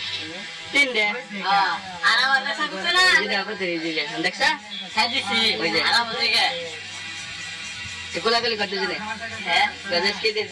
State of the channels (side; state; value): both; identical; correlation 1.00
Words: 3 দে আর আমার কাছে কিছু না দেখো তুই দিলে দেখছ সাজিছি ওই যে আরাম থেকে গোলাগুলি করতে দিলে হ্যাঁ গজেস কি দে